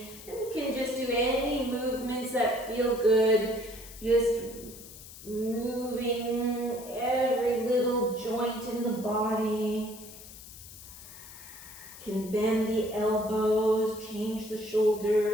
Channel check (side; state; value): left; noise; hiss, 16 dB below the sound